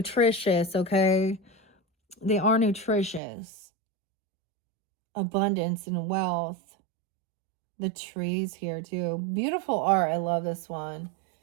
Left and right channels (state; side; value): drops out; left; at 3.2 s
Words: okay? They are nutritious. Abundance and wealth. The trees here too. Beautiful art. I love this one.